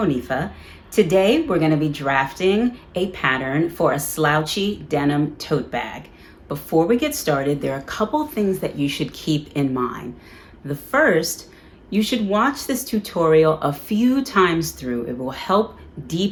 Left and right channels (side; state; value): both; identical; correlation 1.00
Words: Today we're going to be drafting a pattern for a slouchy denim tote bag. Before we get started, there are a couple things that you should keep in mind. The first, you should watch this tutorial a few times through. It will help